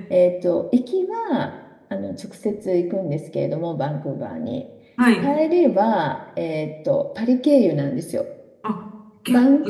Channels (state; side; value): identical; both; correlation 1.00